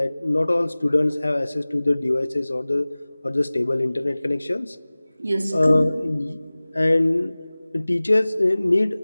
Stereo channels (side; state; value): both; inverted; correlation -0.99